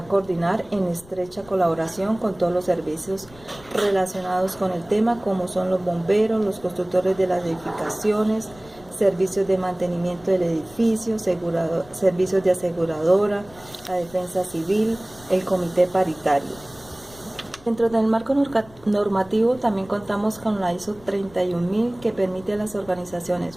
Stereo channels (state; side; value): noise; left; rumble, 23 dB below the sound